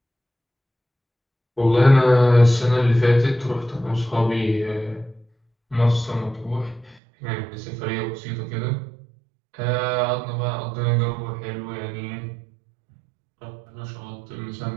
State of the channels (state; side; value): drops out; left; at 7.0 s